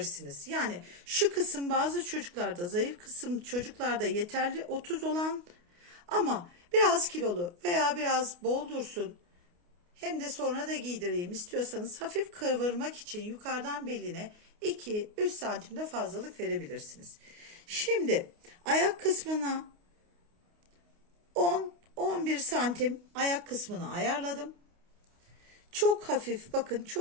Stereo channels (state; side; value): late; left; 29 ms